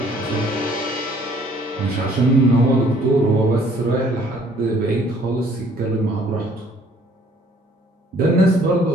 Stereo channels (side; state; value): both; normal; correlation 0.60